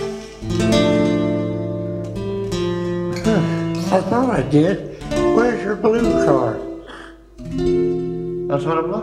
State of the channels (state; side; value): identical; both; correlation 1.00